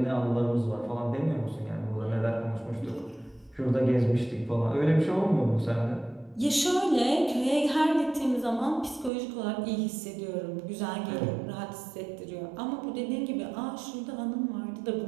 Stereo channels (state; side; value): drops out; left; at 9.1 s